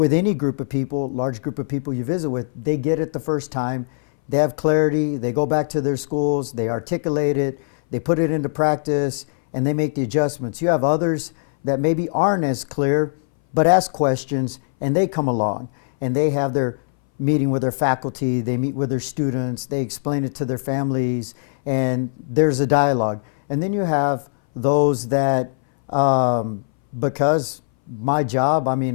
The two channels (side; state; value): right; silent; 61 dB below the other